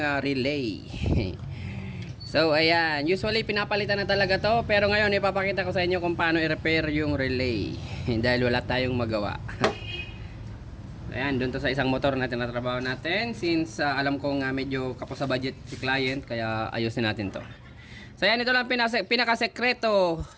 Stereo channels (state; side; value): identical; both; correlation 1.00